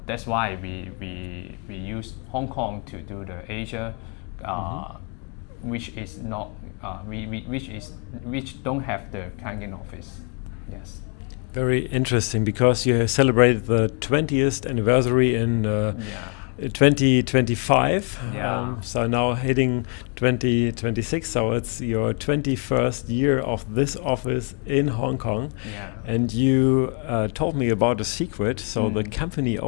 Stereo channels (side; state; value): right; quieter; 39.2 dB